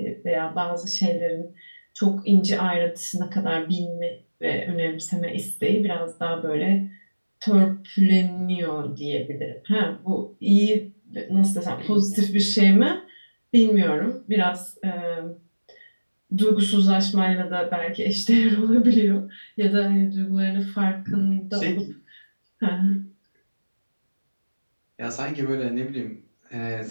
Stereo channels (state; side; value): inverted; both; correlation -1.00